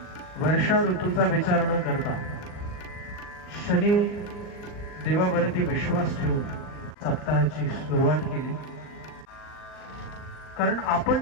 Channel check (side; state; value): right; late; 39 ms